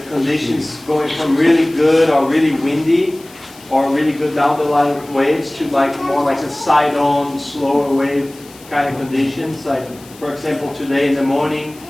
conditions going from really good or really windy or really good down the line waves to like more like a side-on, slower wave kind of conditions. Like, for example, today in the morning,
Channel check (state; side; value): noise; left; hiss, 23 dB below the sound